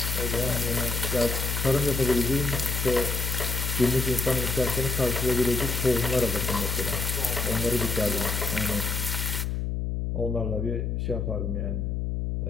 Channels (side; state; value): left; noise; hum, 1 dB below the sound